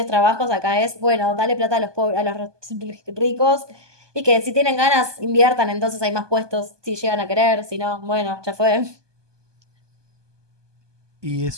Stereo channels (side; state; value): left; late; 1.2 ms